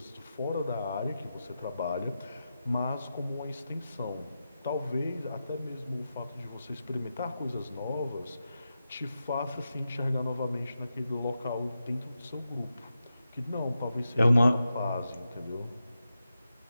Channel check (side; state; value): both; inverted; correlation -0.90